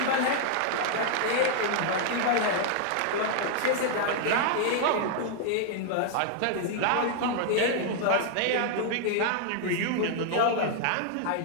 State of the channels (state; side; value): different; both; correlation 0.00